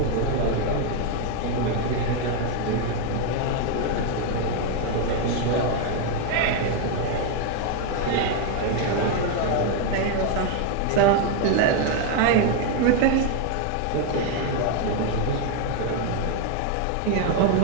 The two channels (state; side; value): different; both; correlation 0.01